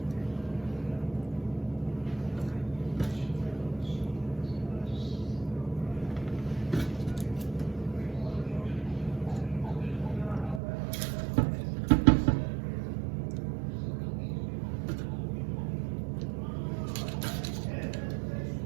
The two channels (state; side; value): drops out; left; at 10.6 s